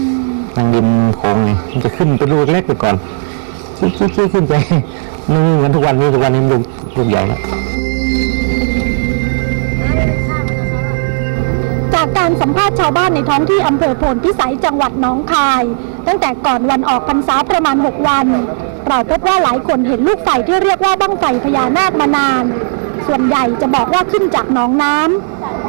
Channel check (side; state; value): left; silent; 72 dB below the other